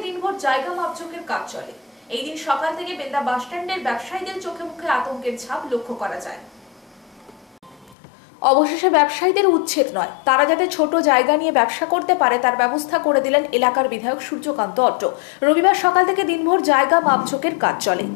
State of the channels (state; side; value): drops out; right; at 8.0 s